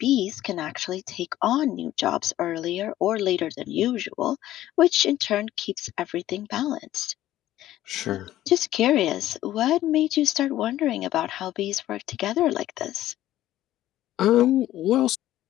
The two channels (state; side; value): quieter; right; 13.9 dB